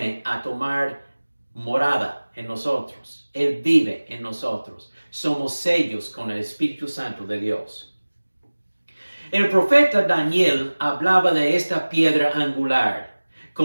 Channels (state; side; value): inverted; both; correlation -1.00